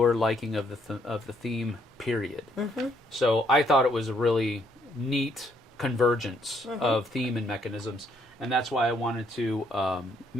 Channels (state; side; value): normal; both; correlation 0.70